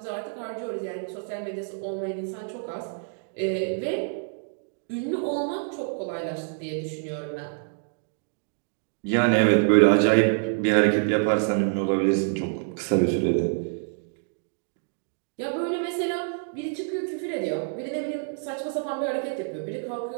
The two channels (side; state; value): left; silent; digital silence